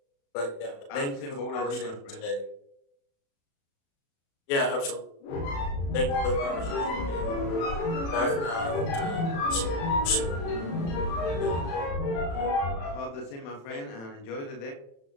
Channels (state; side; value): late; right; 36 ms